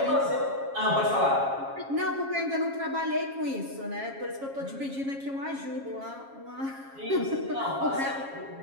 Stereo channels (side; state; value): left; late; 7.3 ms